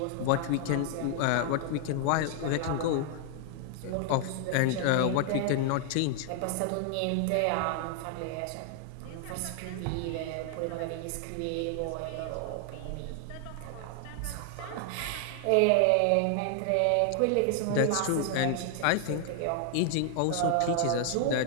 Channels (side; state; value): both; different; correlation 0.00